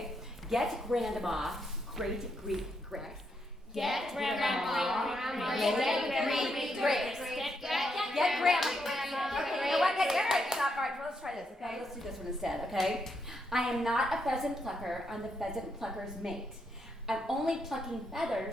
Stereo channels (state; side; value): normal; both; correlation 0.79